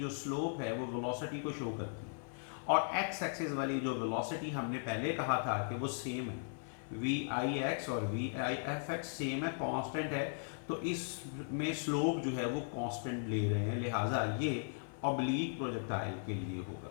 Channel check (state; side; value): silent; right; 53 dB below the other